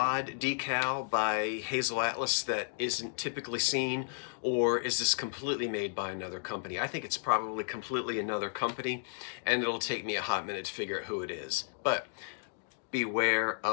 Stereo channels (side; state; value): right; silent; digital silence